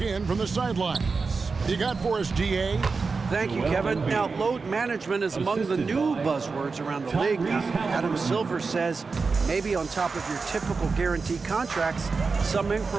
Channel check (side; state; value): left; quieter; 4.5 dB